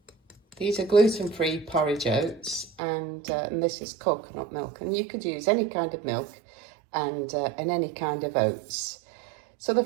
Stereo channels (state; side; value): drops out; left; at 2.8 s